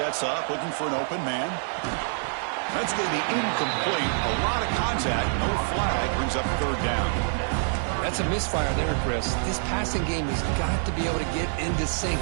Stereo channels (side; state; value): left; silent; digital silence